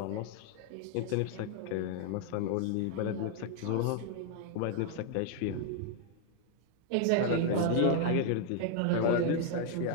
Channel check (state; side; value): different; both; correlation 0.00